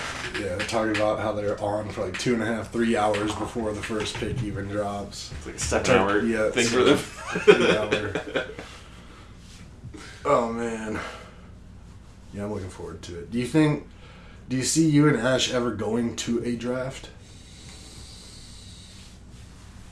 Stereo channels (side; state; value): both; identical; correlation 1.00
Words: Yeah, they're talking about how they're on for, like, 2.5, 3 hours before the first pick even drops. It's like a 7-hour thing for them. 3 hour. Oh, man. Yeah, I'm looking forward to it. Do you see you and Ash ever going to a draft?